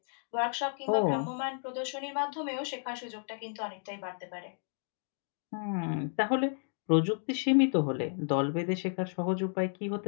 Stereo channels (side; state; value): right; silent; 56 dB below the other